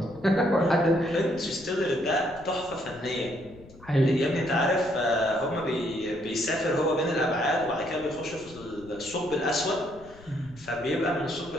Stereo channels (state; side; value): noise; left; rumble, 21 dB below the sound